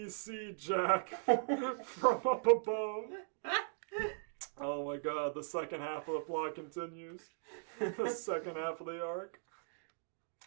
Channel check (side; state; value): left; silent; digital silence